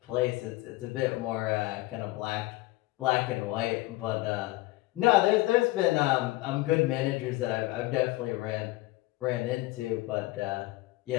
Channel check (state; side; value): quieter; right; 19.6 dB